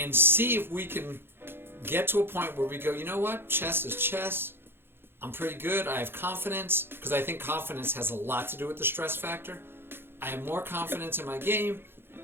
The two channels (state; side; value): late; left; 0.11 ms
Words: see if we can get to a point where we go, you know what? Chess is chess. I'm pretty good. I have confidence, because I think confidence has a lot to do with the stress factor. I have more confidence in my game.